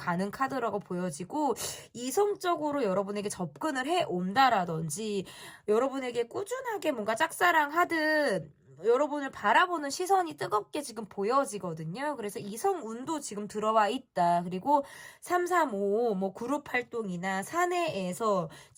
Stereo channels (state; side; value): identical; both; correlation 1.00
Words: 카드라고 보여지고, 이성적으로 여러분에게 접근을 해 온다라든지 여러분에게 꾸준하게 뭔가 짝사랑하듯 여러분을 바라보는 시선이 뜨겁게 지금 보여지거든요. 그래서 이성운도 지금 들어와 있다. 그리고 335 뭐 그룹 활동이나 사내에서,